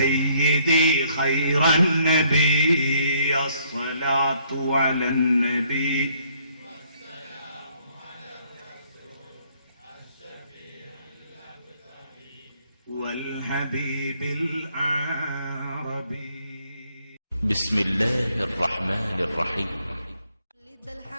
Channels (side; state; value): both; inverted; correlation -0.67